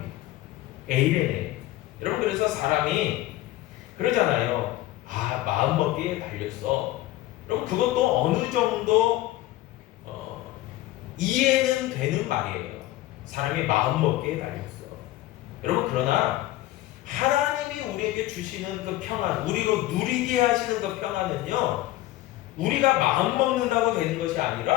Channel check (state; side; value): quieter; right; 16.2 dB